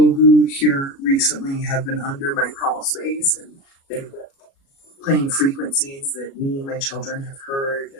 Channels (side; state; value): right; late; 36 ms